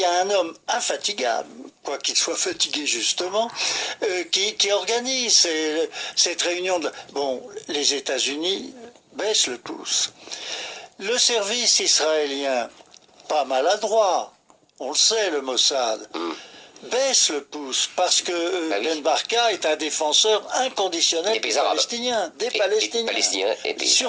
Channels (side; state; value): both; identical; correlation 1.00